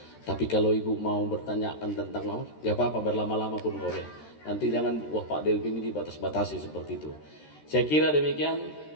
Tapi kalau Ibu mau bertanyakan tentang mau, nggak apa-apa, berlama-lama pun boleh. Nanti jangan, wah Pak Delvin ini dibatas-batasi seperti itu. Saya kira demikian,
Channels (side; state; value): right; late; 13 ms